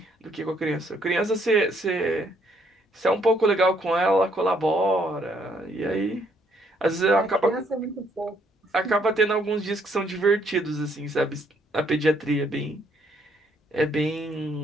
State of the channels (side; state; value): both; normal; correlation 0.69